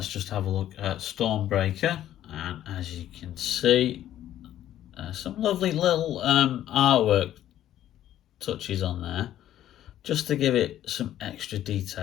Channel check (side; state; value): right; quieter; 12.1 dB